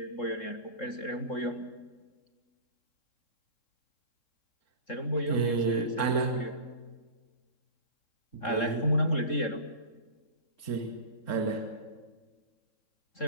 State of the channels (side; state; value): right; late; 3.7 ms